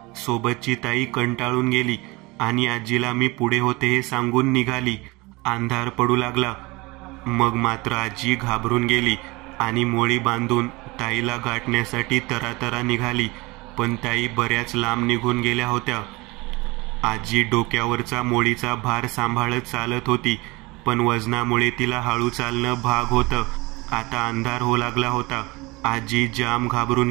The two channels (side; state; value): left; quieter; 23.7 dB